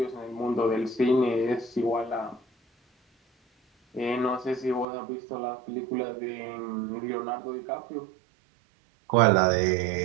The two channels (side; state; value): left; drops out; at 4.9 s